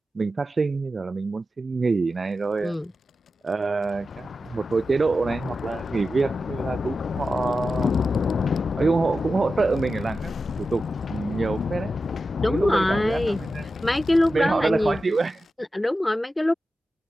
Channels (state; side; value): normal; both; correlation 0.91